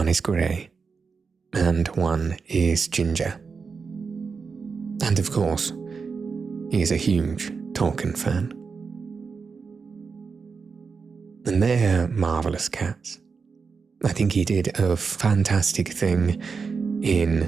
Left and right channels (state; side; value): quieter; left; 5.2 dB